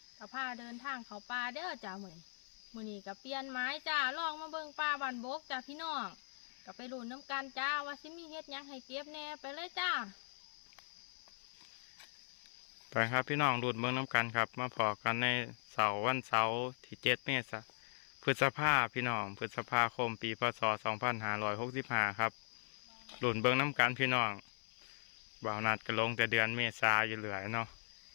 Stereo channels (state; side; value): silent; right; 51 dB below the other